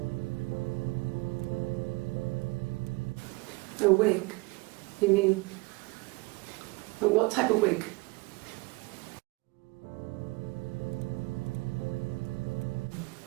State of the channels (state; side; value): quieter; left; 25.2 dB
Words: A wig? You mean, but what type of wig?